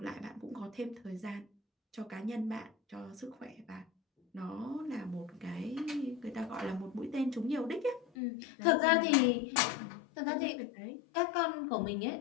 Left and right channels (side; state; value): right; drops out; at 8.1 s